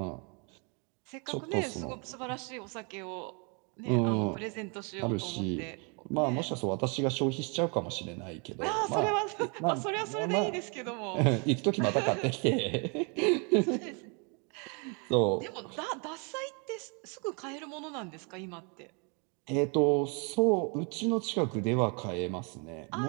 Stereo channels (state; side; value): quieter; left; 34.4 dB